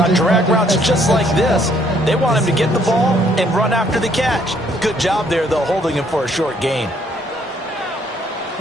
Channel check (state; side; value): normal; both; correlation 0.66